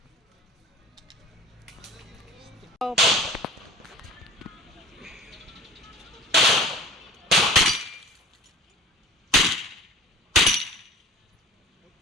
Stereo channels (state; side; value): normal; both; correlation 0.42